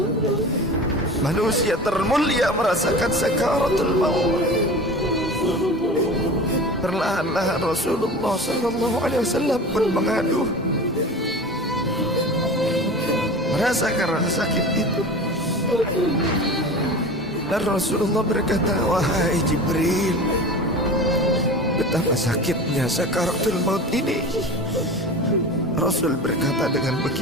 Manusia termulia merasakan sakaratul maut. Perlahan-lahan Rasulullah sallallahu alaihi wasallam pun mengaduh, merasakan rasa sakit itu. Dan Rasulullah berkata, wahai Jibril, betapa sakitnya sakaratul maut ini. Rasul berkata dengan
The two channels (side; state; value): both; normal; correlation 0.34